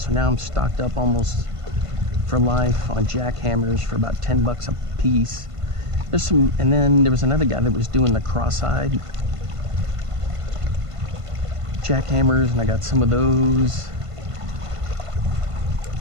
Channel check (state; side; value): late; left; 1.5 ms